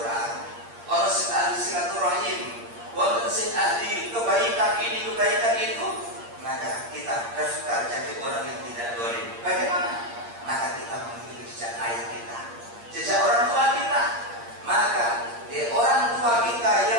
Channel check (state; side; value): late; left; 8.6 ms